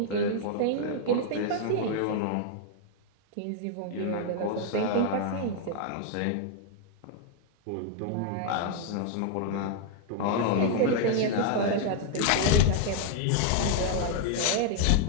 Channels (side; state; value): both; different; correlation 0.00